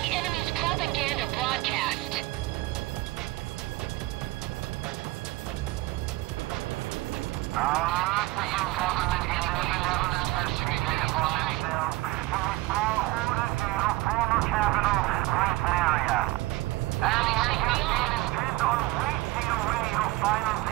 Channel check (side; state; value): left; quieter; 19.4 dB